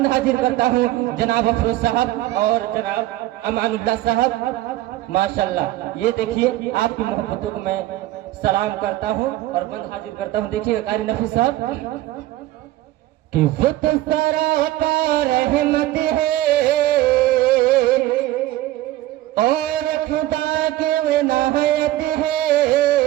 हाजिर करता हूँ जनाब अफरोज साहब और जनाब अमानुल्लाह साहब। माशाल्लाह, ये देखिए आपकी मोहब्बतों को मैं सलाम करता हूँ और बंद हाजिर करता हूँ। देखिए कारी नफीस साहब कि वो तो सरापा रहमत है और खुदा की विनायत है।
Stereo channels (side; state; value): left; quieter; 15.5 dB